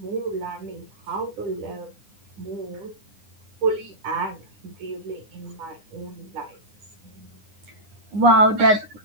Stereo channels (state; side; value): late; left; 9.8 ms